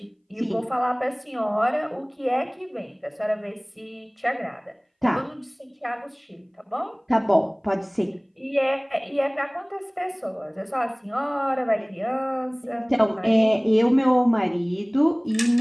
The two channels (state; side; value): identical; both; correlation 1.00